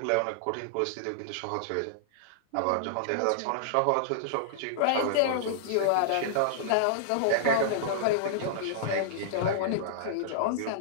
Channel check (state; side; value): different; both; correlation -0.01